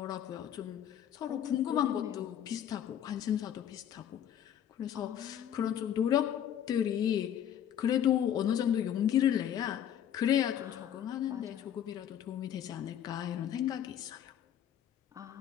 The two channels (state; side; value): quieter; right; 10.0 dB